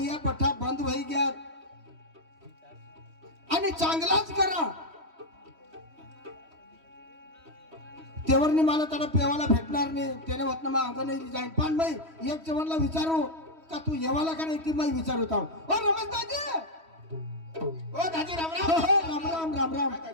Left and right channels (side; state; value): left; late; 3.1 ms